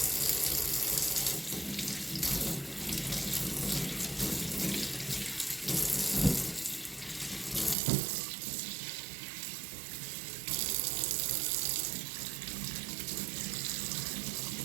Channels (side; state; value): left; drops out; at 7.8 s